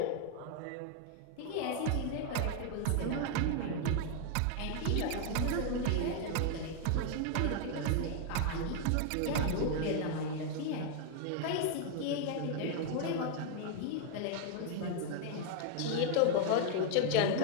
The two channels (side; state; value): both; different; correlation 0.00